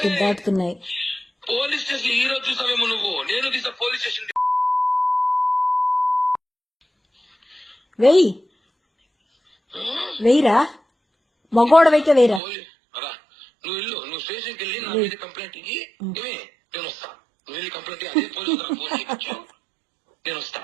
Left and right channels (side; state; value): left; drops out; at 12.4 s